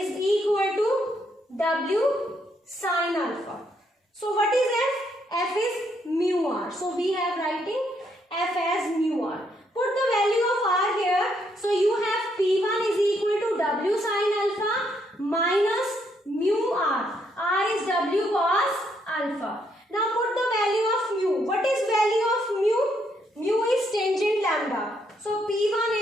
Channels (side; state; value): both; normal; correlation 0.74